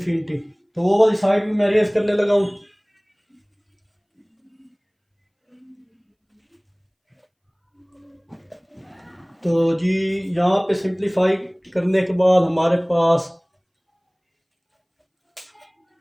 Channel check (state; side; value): identical; both; correlation 1.00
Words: तो वो वाली साइड भी मैं रेज करने लगा हूँ। तो जी यहाँ पे सिंप्लीफाई करने के बाद हमारे पास